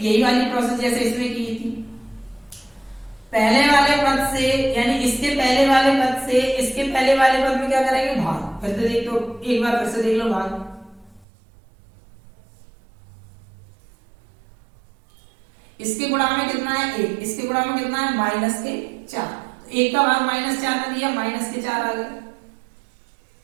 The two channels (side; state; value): left; drops out; at 11.2 s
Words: वाली प्रोसेस जैसे इसमें की थी। पहले वाले पद से, यानी इसके पहले वाले पद से इसके पहले वाले पद में क्या करेंगे, भाग। फिर से देख लो, एक बार फिर से देख लो भाग। इसके गुणा में कितना है 1, इसके गुणा में कितना है माइनस के 4, तो 1 का भाग -4 में दिया, माइनस के 4 आ गए।